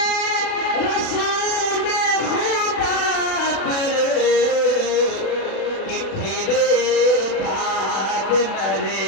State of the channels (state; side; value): late; right; 36 ms